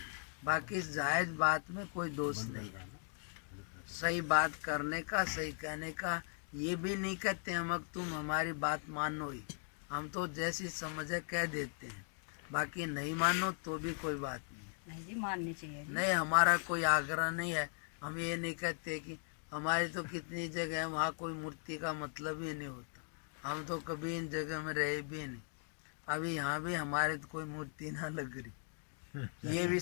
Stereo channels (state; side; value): silent; right; 52 dB below the other